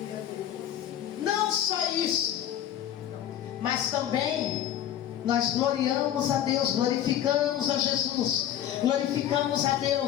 Não só isso, mas também nós gloriamos a Deus, glorificamos a Jesus, glorificamos a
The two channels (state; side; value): quieter; right; 11.1 dB